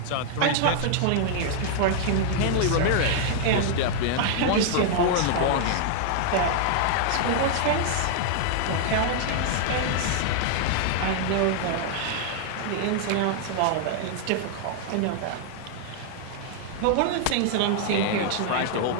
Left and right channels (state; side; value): different; both; correlation -0.01